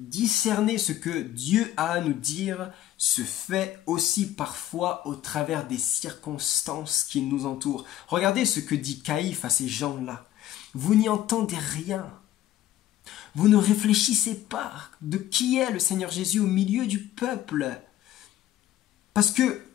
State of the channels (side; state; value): right; quieter; 12.9 dB